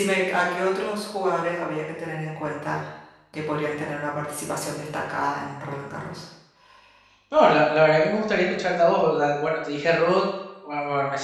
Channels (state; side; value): identical; both; correlation 1.00